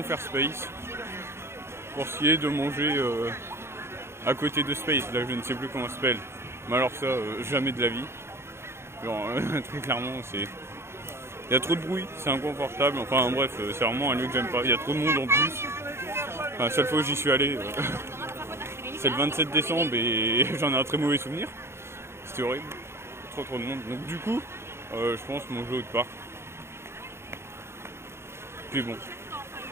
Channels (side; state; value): left; late; 0.12 ms